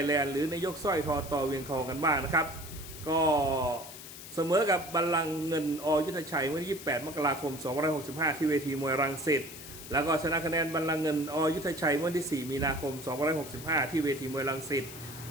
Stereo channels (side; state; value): left; noise; hiss, 13 dB below the sound